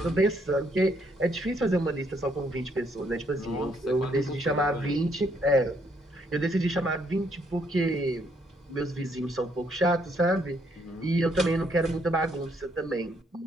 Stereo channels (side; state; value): both; normal; correlation 0.71